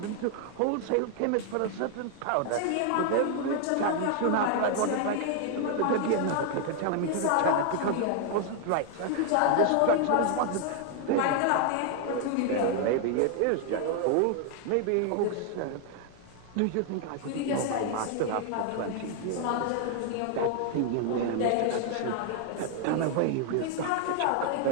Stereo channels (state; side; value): different; both; correlation 0.00